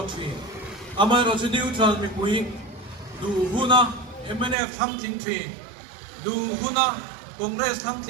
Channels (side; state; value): left; drops out; at 4.5 s